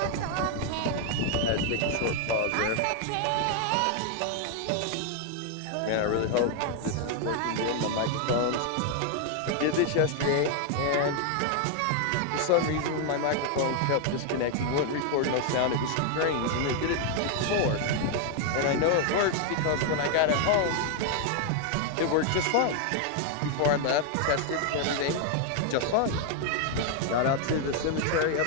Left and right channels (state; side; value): different; both; correlation 0.00